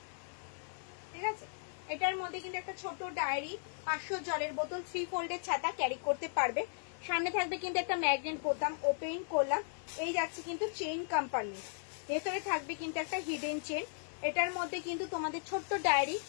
ঠিক আছে, এটার মধ্যে কিন্তু একটা ছোট ডায়েরি, 500 জলের বোতল, 3 ফোল্ডের ছাতা ক্যারি করতে পারবে। সামনে থাকবে কিন্তু একটা ম্যাগনেট বোতাম, ওপেন করলাম, এই যাচ্ছে কিন্তু চেইন কম্পার্টমেন্ট, ভেতরে থাকবে কিন্তু একটা হিডেন চেন। এটার মধ্যে কিন্তু তোমাদের ছোট্ট ডায়েরি,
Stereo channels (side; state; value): right; silent; digital silence